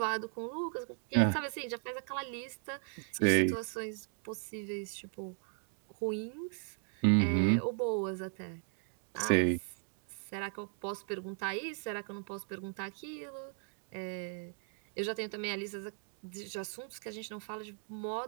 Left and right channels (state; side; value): silent; left; 53 dB below the other